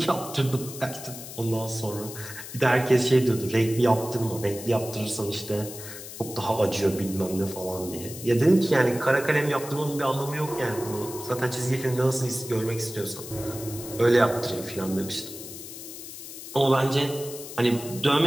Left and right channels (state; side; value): noise; left; hiss, 12 dB below the sound